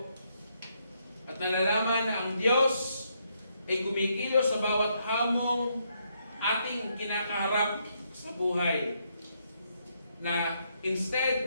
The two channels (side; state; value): both; inverted; correlation -0.75